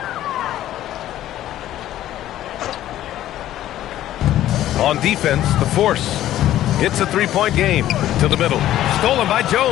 On defense, the force. It's a 3-point game. To the middle. Stolen by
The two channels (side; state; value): right; quieter; 13.1 dB